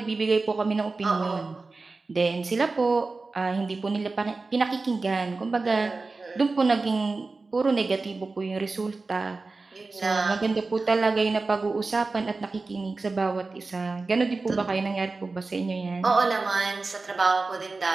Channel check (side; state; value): left; quieter; 3.7 dB